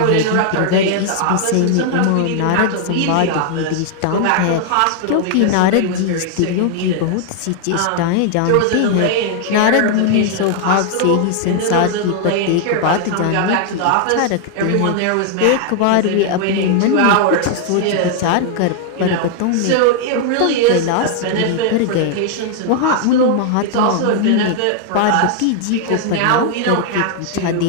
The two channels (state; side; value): different; both; correlation 0.00